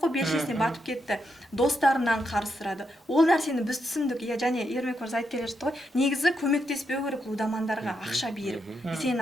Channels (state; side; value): normal; both; correlation 0.82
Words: белшесіне батып кетті, достарынан қарыз сұрады. Ол нәрсені біз түсіндік, және Ермек мырза айтып келе жатты ғой, негізі көмектеспеу керек лудомандарға ақша беріп. Сен